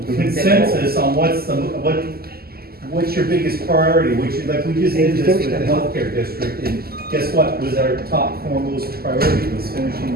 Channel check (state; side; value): late; left; 0.45 ms